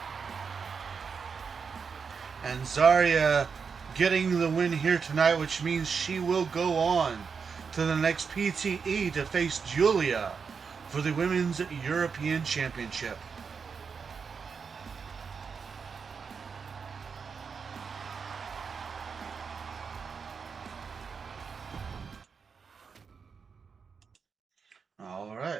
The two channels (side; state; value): left; quieter; 5.8 dB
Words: And Zarya getting the win here tonight, which means she will go on to the next PTE to face Julia for the Women's European Championship. All